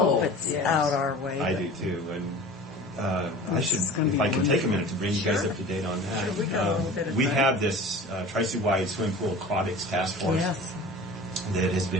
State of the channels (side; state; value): both; normal; correlation 0.39